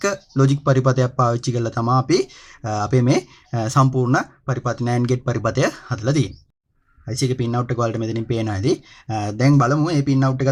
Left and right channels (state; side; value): identical; both; correlation 1.00